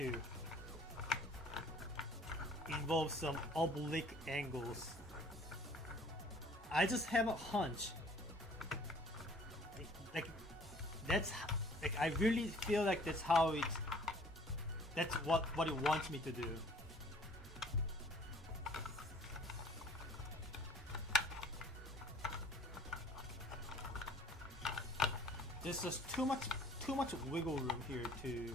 involve some oblique angles. I just have a hunch. Like that's like I really feel like that's how it's That's what it wants me to do. There's just too much wiggle room here to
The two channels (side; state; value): both; normal; correlation 0.54